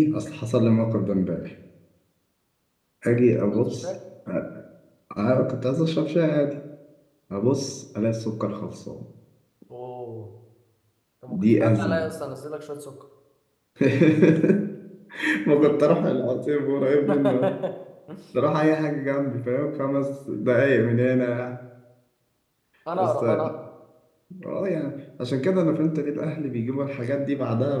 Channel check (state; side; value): identical; both; correlation 1.00